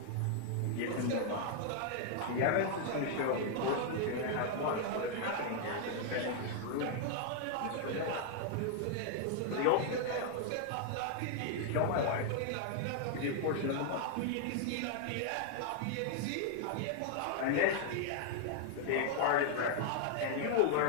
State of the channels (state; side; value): different; both; correlation 0.00